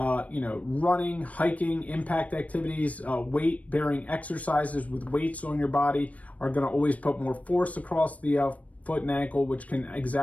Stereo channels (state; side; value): late; right; 0.068 ms